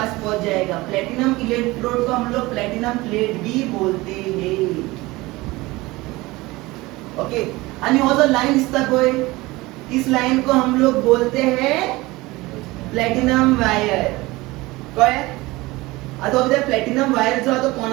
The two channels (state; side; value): quieter; left; 20.9 dB